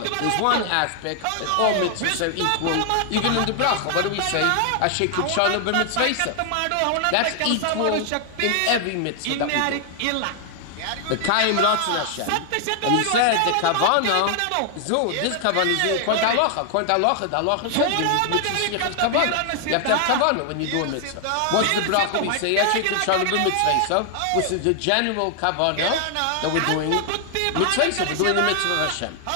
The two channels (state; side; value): different; both; correlation 0.00